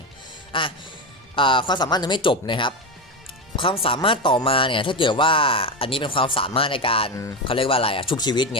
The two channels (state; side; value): normal; both; correlation 0.15